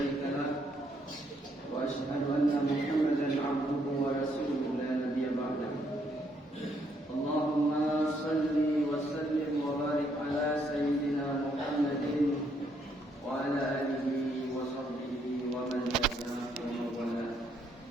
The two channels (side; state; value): both; normal; correlation 0.72